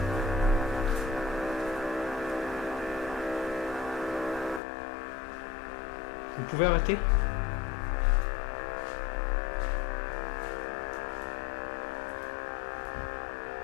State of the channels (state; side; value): drops out; right; at 4.6 s